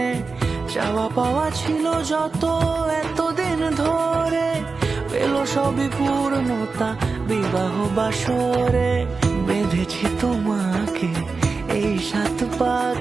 চাওয়া পাওয়া ছিল যত এতদিন ধরে, পেল সবই পূর্ণতা বিবাহ বাসরে। বেঁধেছি তোমাকে এই 7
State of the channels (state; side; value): quieter; left; 4.3 dB